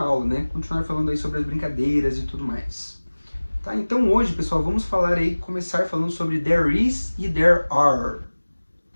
aula, né? Continuar falando aí sobre as brincadeiras e tudo mais. Tá? Então hoje, pessoal, vamos falar aí, começar falando sobre there is e there are,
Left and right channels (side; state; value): both; inverted; correlation -1.00